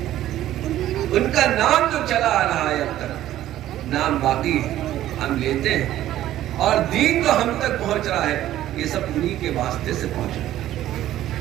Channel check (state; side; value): quieter; left; 13.3 dB